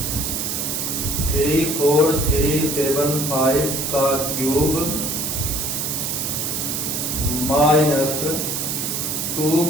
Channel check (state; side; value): noise; right; hiss, 2 dB below the sound